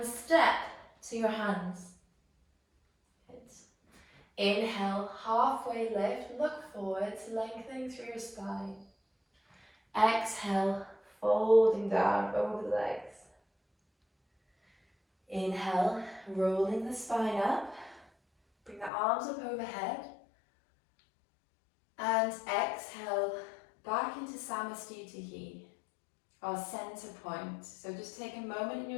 step to your hands. Good. Inhale, halfway lift, look forwards, lengthening through your spine. Exhale, folding down over the legs. Inhale, rolling the spine up. Bring the arms up overhead. And exhale, back into Samastitihi, our center point. So just take a moment in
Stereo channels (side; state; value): right; drops out; at 18.9 s